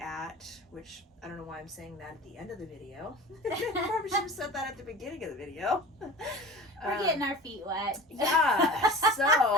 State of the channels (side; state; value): both; normal; correlation 0.36